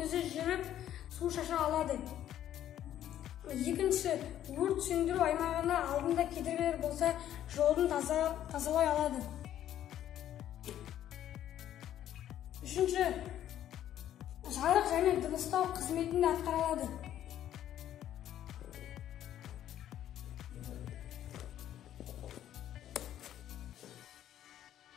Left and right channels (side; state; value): right; quieter; 11.5 dB